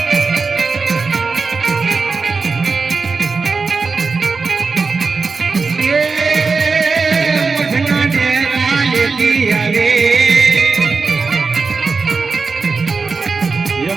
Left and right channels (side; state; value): left; quieter; 4.5 dB